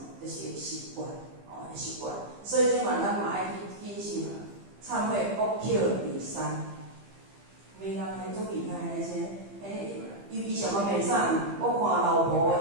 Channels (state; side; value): late; left; 15 ms